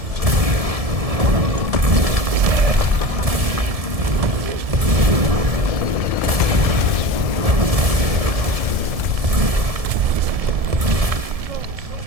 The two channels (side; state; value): left; late; 1.7 ms